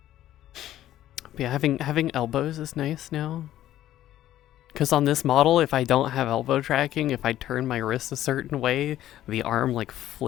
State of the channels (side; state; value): right; quieter; 13.1 dB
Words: But yeah, having elbows is nice now. Because on this model, if I don't have elbow tracking, if I turn my wrist a certain way, the arm like